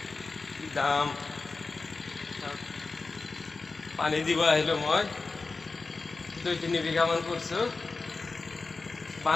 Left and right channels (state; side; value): quieter; right; 3.9 dB